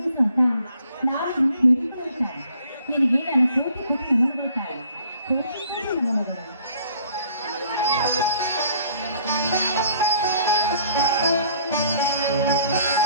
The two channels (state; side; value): inverted; both; correlation -0.59